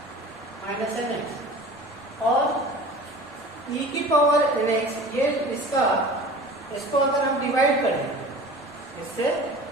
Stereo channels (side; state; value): left; noise; rumble, 30 dB below the sound